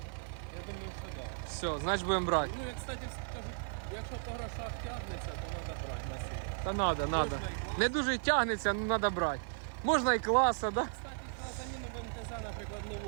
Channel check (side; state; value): left; silent; digital silence